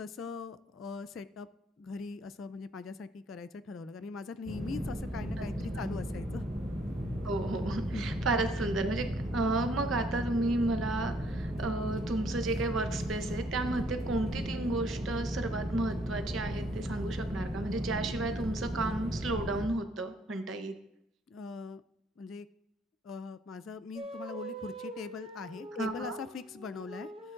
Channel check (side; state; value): both; normal; correlation 0.64